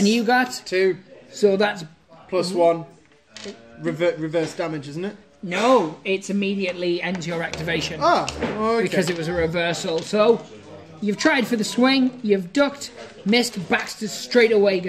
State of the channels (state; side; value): identical; both; correlation 1.00